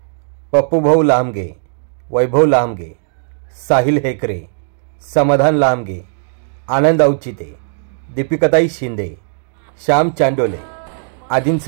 पप्पू भाऊ लामगे, वैभव लामगे, साहिल हेकरे, समाधान लामगे, आनंद औचिते, दीपिकाताई शिंदे, श्याम चांडोले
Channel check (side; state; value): left; silent; digital silence